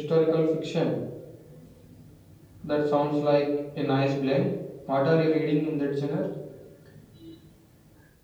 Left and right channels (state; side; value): identical; both; correlation 1.00